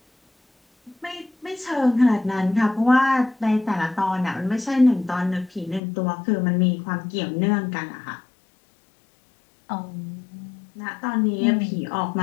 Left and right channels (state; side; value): drops out; right; at 5.8 s